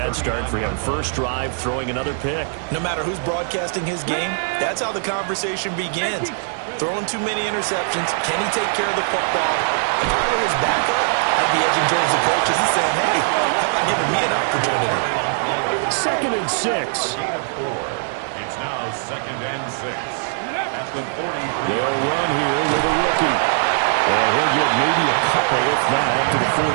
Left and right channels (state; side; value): silent; left; digital silence